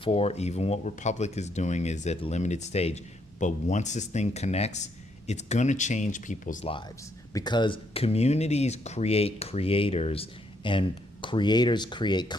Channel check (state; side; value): normal; both; correlation 0.73